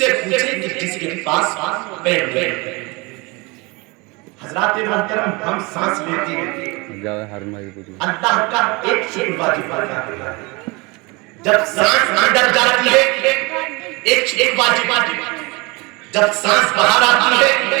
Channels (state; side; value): quieter; left; 26.5 dB